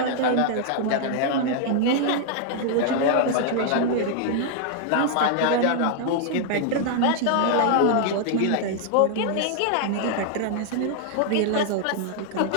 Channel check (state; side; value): different; both; correlation 0.00